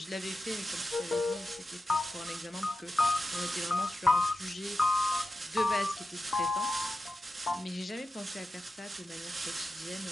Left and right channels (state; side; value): normal; both; correlation 0.92